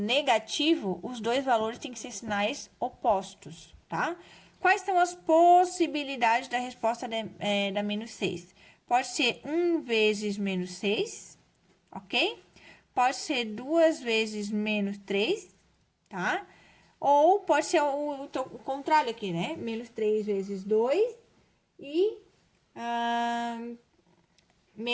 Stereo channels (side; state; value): both; identical; correlation 1.00